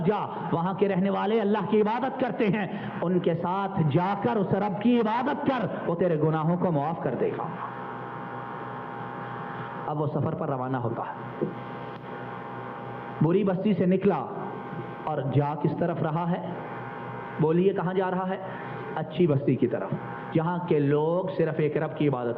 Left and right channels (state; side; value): identical; both; correlation 1.00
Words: جا، وہاں کے رہنے والے اللہ کی عبادت کرتے ہیں، ان کے ساتھ جا کر اس رب کی عبادت کر، وہ تیرے گناہوں کو معاف کر دے گا۔ اب وہ سفر پر روانہ ہوتا ہے، بری بستی سے نکلا اور جا کس طرف رہا ہے؟ بولیے کہاں جا رہا ہے؟ اچھی بستی کی طرف، جہاں کے لوگ صرف ایک رب کی